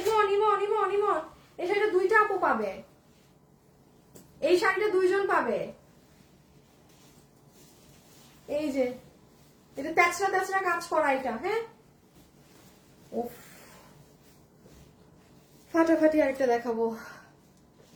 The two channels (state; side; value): identical; both; correlation 1.00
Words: ইমন ইমন ইমন, এই শাড়িটা দুইটা আপু পাবে, এই শাড়িটা দুইজন পাবে। এই যে এটা তেচরা তেচরা কাজ করা এটা, হ্যাঁ উফ ফাটাফাটি। আরেকটা দেখাবো,